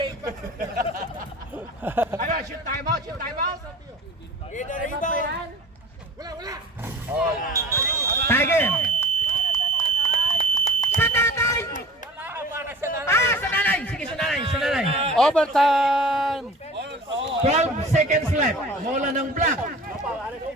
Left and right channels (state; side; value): normal; both; correlation 0.41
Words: Ano, shoot time out, shoot time out. Tiger. Sa tatay. Ah, sa nanay. Sige, sa nanay. Sa nanay. Overtime! 12 seconds left. Bola ng black.